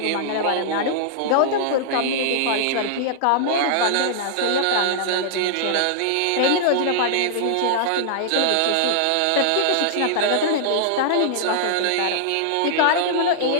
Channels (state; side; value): different; both; correlation -0.01